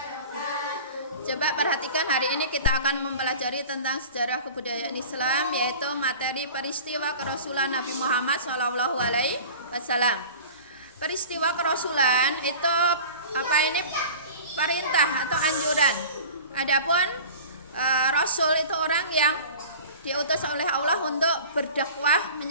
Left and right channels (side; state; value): both; inverted; correlation -0.39